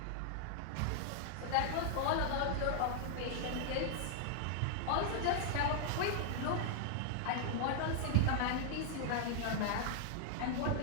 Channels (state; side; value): different; both; correlation -0.01